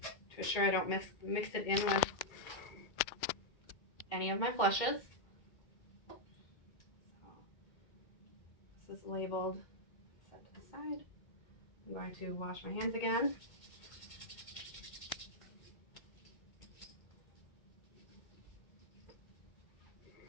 to assure I don't mix it in with any of my flushes. So this is labeled, set to the side. I'm going to wash my hands again.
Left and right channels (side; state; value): right; late; 2.2 ms